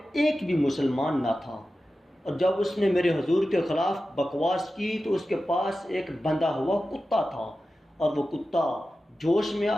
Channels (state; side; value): normal; both; correlation 0.93